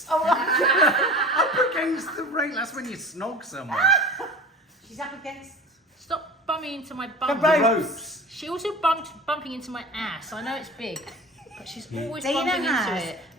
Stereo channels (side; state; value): both; normal; correlation 0.36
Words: Oh, Up against the rail. That's when you snog someone. she's up against Stop bumping into my bum. The The rope. ropes. She also bumping into my ass. I know it's big, but she's always Dana bumping into has it.